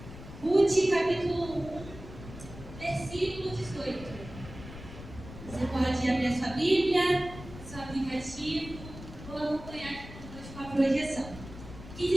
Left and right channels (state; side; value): noise; left; rumble, 14 dB below the sound